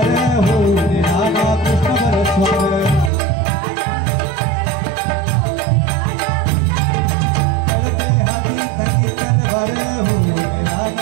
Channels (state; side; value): drops out; left; at 3.1 s